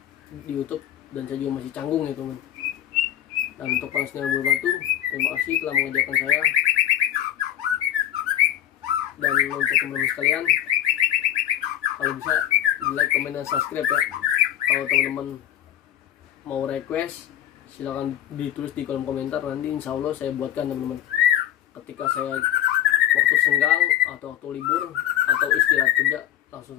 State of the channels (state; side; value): quieter; right; 11.6 dB